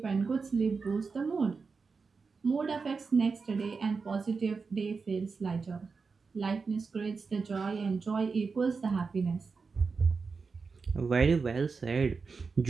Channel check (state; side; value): quieter; left; 4.8 dB